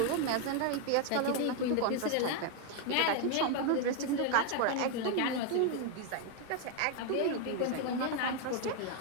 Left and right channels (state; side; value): different; both; correlation 0.01